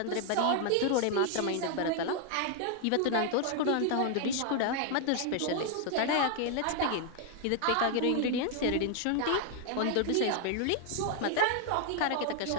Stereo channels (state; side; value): different; both; correlation 0.00